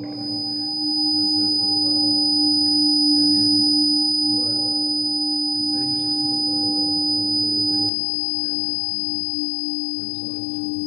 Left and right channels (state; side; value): drops out; right; at 7.9 s